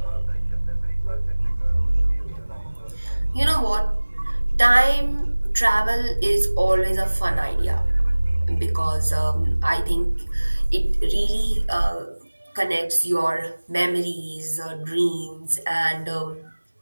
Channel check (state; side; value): inverted; both; correlation -1.00